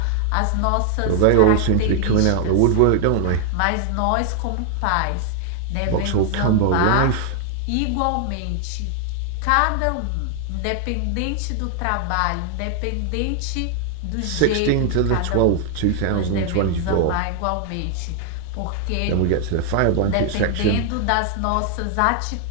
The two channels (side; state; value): both; different; correlation 0.00